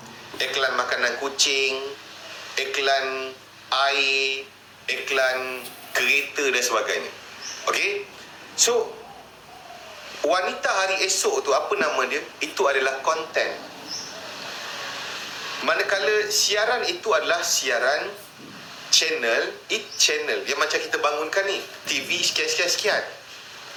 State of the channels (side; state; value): both; identical; correlation 1.00